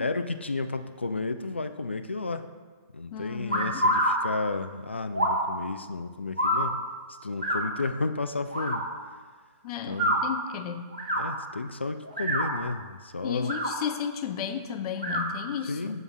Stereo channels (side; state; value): both; inverted; correlation -0.41